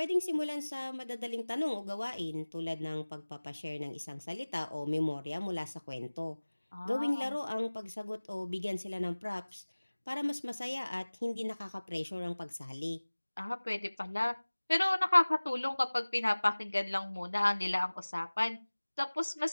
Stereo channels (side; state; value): both; inverted; correlation -1.00